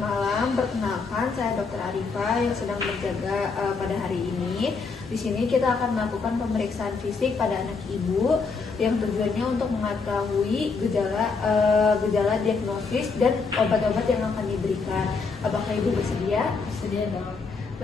malam. Perkenalkan, saya Dr. Arifa yang sedang berjaga pada hari ini. Di sini kita akan melakukan pemeriksaan fisik pada anak ibu yang tujuannya untuk mengetahui gejala diagnosis dan obat-obat yang akan diberikan. Apakah ibu bersedia? Bersedia dong.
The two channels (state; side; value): quieter; right; 4.7 dB